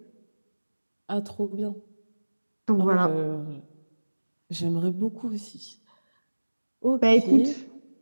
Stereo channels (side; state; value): both; inverted; correlation -1.00